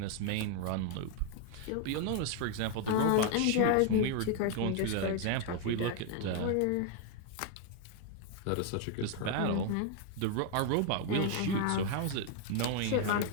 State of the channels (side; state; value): both; different; correlation 0.00